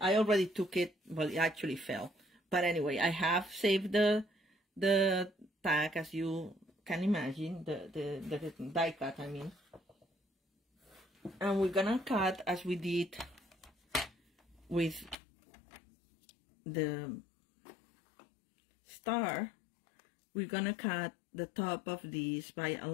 already took it, well, it actually fell. But anyway, I have saved the tag, as you can imagine, the die cut, I mean. And we're gonna cut as we did with the star. We're gonna cut the top of this by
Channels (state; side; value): drops out; right; at 15.2 s